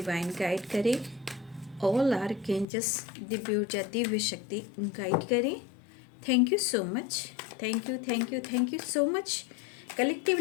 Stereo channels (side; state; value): right; drops out; at 2.7 s